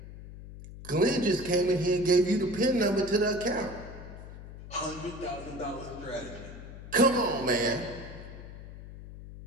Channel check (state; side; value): noise; left; hum, 14 dB below the sound